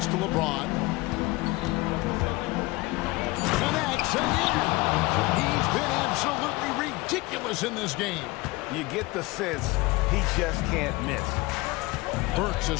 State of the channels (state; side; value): quieter; right; 22.0 dB